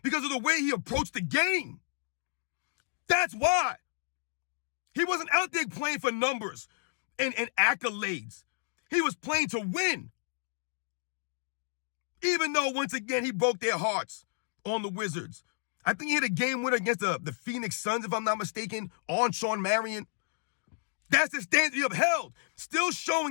because of the way he approached the game. That's why. He wasn't out there playing for numbers and accolades. He was playing to win. Even though, once again, he broke their hearts on the Wizards. I think he had a game winner against the Phoenix Suns, if I'm not mistaken, on Shawn Marion. That's the standard he upheld. Still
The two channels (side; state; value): right; silent; digital silence